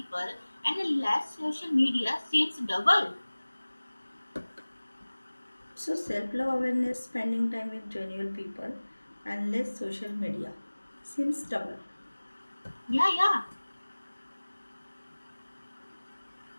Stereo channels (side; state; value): both; inverted; correlation -1.00